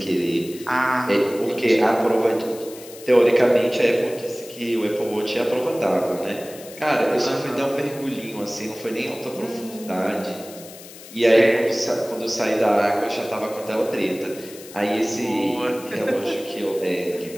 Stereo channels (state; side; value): noise; left; hiss, 17 dB below the sound